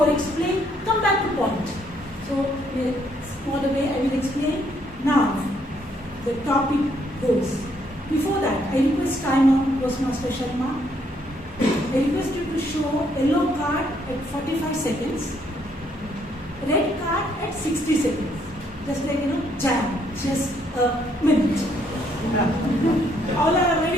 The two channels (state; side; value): normal; both; correlation 0.70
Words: explain, come back to point. So in a smaller way I will explain. Now the topic goes. Before that, I request timer, Toastmaster Sharma. I request you to show yellow card at 45 seconds, red card at 60 seconds. Just like, jam, just a minute. All are